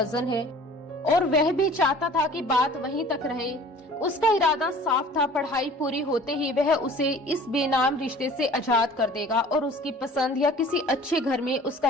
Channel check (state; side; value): normal; both; correlation 0.47